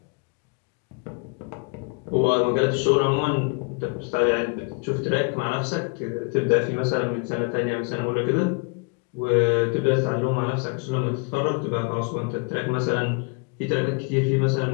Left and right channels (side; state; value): right; quieter; 34.3 dB